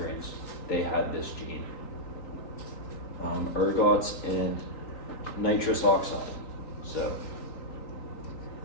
They had this gene. ergots, and nitrous oxide. So,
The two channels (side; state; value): right; late; 3.8 ms